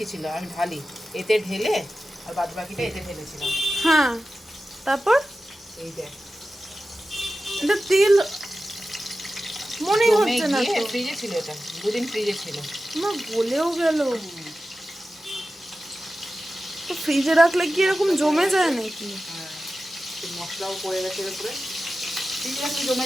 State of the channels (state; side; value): normal; both; correlation 0.94